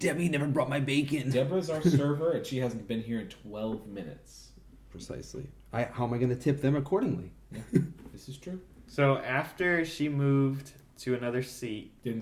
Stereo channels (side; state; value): both; identical; correlation 1.00